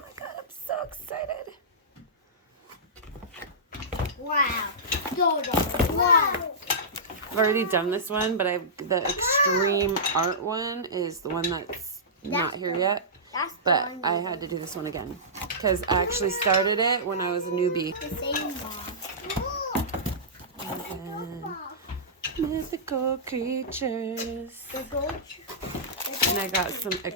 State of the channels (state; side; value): normal; both; correlation -0.17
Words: god, I'm so excited. Wow. Wow. I've already done this one, but the extreme art one is the one that's not here yet. But I had to do this one again because I actually started it when I was a newbie. The same one. And then mythical creatures. The gold. And I got some